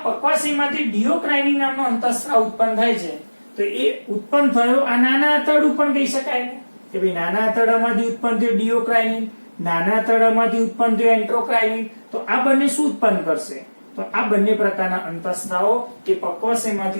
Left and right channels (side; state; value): both; inverted; correlation -1.00